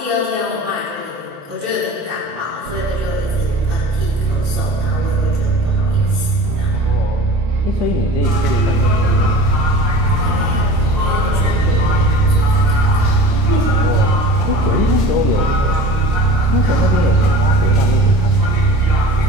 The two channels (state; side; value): late; left; 29 ms